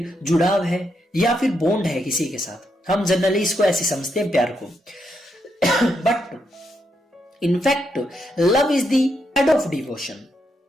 जुड़ाव है या फिर बॉन्ड है किसी के साथ। हम जनरली इसको ऐसे समझते हैं प्यार को। But in fact love is the head of devotion.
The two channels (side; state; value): both; normal; correlation 0.80